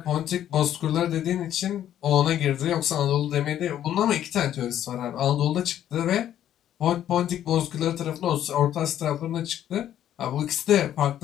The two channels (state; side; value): quieter; right; 11.1 dB